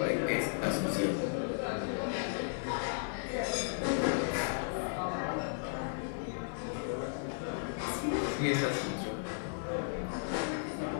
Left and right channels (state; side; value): silent; right; digital silence